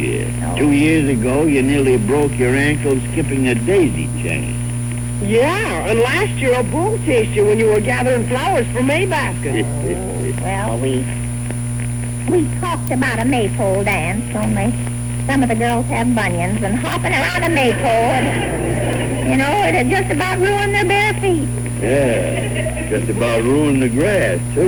Oh. 2 years ago, you nearly broke your ankle skipping a daisy chain. Yeah, and last year a bull chased you when you were gathering flowers for May baskets. Well, we talked about a maypole dance, only some of the girls have bunions, and hopping around a maypole, it had just about ruined their bare feet. Yeah, just about ruined the grass,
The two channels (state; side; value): identical; both; correlation 1.00